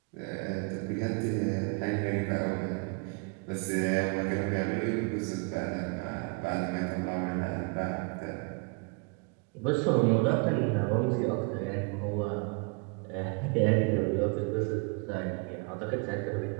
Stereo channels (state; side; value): quieter; left; 33.4 dB